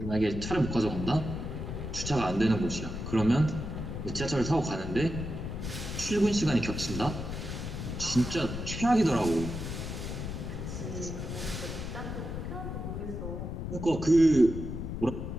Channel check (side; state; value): left; noise; rumble, 5 dB below the sound